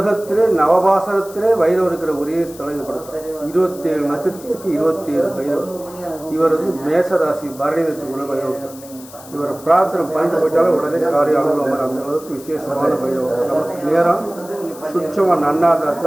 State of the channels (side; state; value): left; noise; hiss, 19 dB below the sound